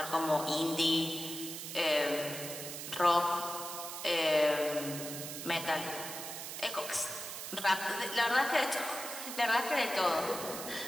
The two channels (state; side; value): noise; right; hiss, 7 dB below the sound